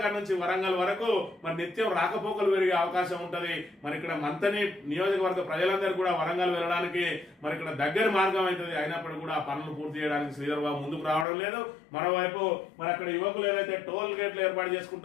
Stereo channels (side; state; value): right; drops out; at 11.2 s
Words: నుంచి వరంగల్ వరకు మరి నిత్యం రాకపోకలు పెరిగే అవకాశం ఉంటది. మరి ఇక్కడ మంతని నియోజకవర్గ ప్రజలందరూ కూడా వరంగల్ వెళ్ళడానికి మరి ఇక్కడ దగ్గర మార్గం అవుతుంది. అయినప్పటికీ కూడా ఆ పనులు పూర్తి చేయడానికి శ్రీధర్ బాబు ముందుకు రావడం లేదు. మరోవైపు మరి అక్కడ యువకులు ఏదైతే టోల్ గేట్లు ఏర్పాటు